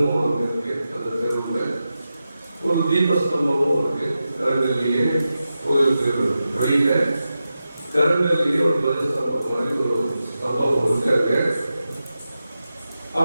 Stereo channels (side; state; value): both; inverted; correlation -0.91